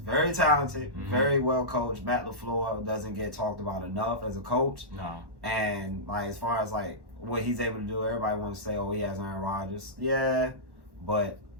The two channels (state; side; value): late; left; 1.1 ms